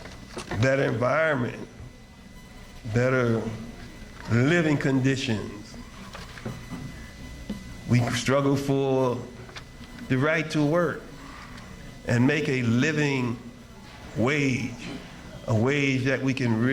better environment, better living conditions. We struggle for the right to work and make a living wage, a wage that we can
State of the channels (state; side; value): identical; both; correlation 1.00